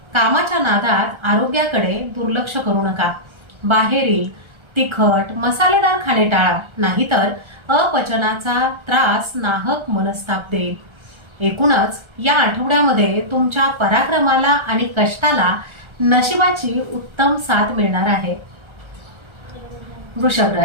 कामाच्या नादात आरोग्याकडे दुर्लक्ष करू नका। बाहेरील तिखट मसालेदार खाणे टाळा, नाहीतर अपचनाचा त्रास नाहक मनस्ताप देईल। एकूणच या आठवड्यामध्ये तुमच्या पराक्रमाला आणि कष्टाला नशिबाची उत्तम साथ मिळणार आहे। वृषभ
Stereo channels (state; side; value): late; left; 1.3 ms